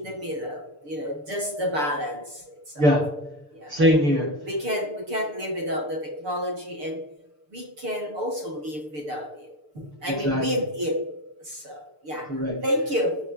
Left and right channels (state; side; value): late; left; 6.7 ms